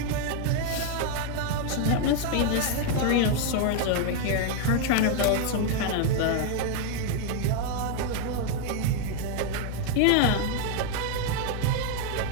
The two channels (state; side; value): different; both; correlation 0.00